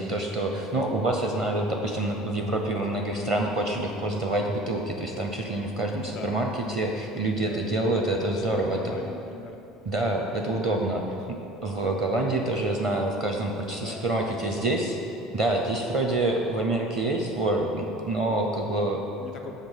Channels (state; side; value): normal; both; correlation 0.44